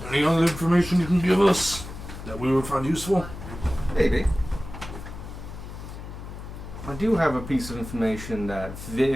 Any other information you can give us that we would find useful? Maybe. I do have a piece of information that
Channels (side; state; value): left; noise; hum, 11 dB below the sound